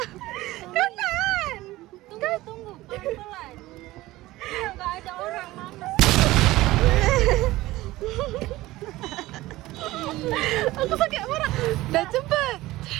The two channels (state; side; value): quieter; left; 17.8 dB